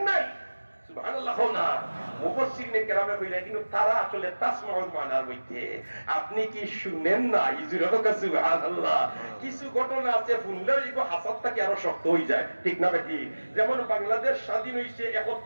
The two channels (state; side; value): inverted; both; correlation -1.00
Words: নাই সুবহানাল্লাহ না মুফাসসিরিনে কেরামে কইরা কিন্তু তারা আসলে তাসমাউল মানার মধ্যে আপনি কি শুনেন না ইজুরা সুবহানাল্লাহ কিছু ঘটনা আছে শুনলে ইগো হাসাতটা কি আরো শক্ত হই যায় ঠিক না বেটি যেমন বাংলাদেশ স্বাধীন হইছে